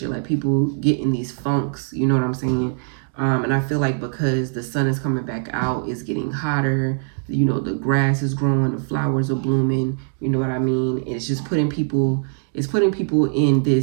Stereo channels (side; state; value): left; silent; digital silence